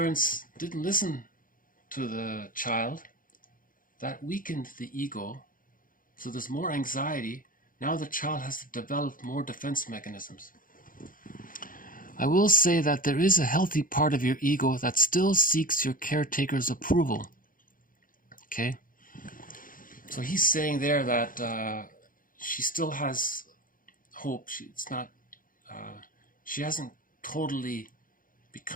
didn't listen to the child. That weakened the ego. So there's more anxiety. Now the child has to develop more defense mechanisms. I will say that there is a healthy part of your ego that still seeks your caretaker's approval. Okay? So he's saying there that she still has hope. She hasn't totally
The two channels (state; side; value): late; right; 0.40 ms